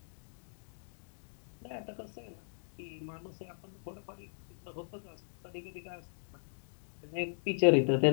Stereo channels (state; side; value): silent; right; digital silence